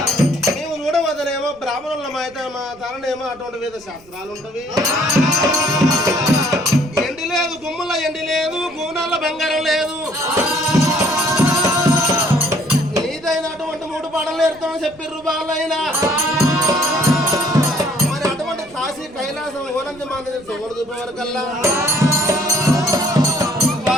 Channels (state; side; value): noise; right; rumble, 26 dB below the sound